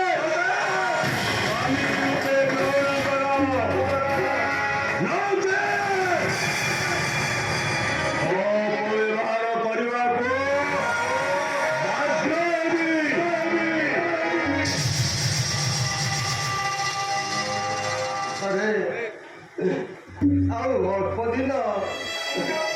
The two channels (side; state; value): both; identical; correlation 1.00